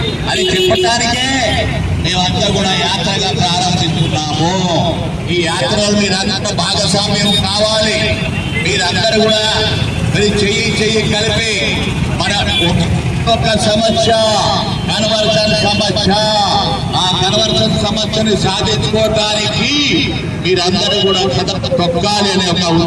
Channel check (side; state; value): both; identical; correlation 1.00